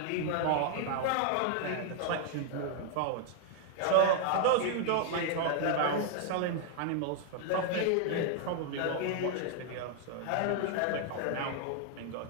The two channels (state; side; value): different; both; correlation 0.00